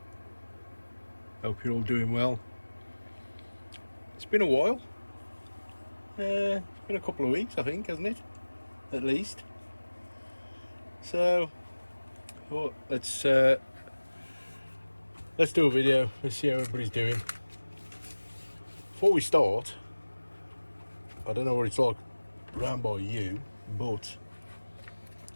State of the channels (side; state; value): both; inverted; correlation -1.00